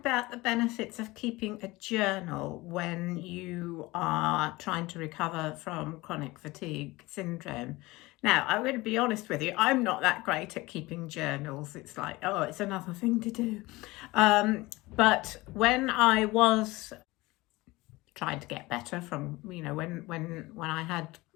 the benefits of keeping a journal when you are trying to recover from chronic fatigue syndrome. Now, I'm going to be honest with you, I'm not that great at keeping journals. It's like, oh, it's another thing to do. But when I was trying to get better from, when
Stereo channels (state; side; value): quieter; right; 21.0 dB